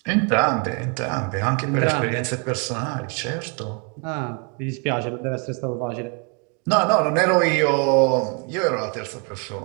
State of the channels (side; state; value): left; quieter; 36.7 dB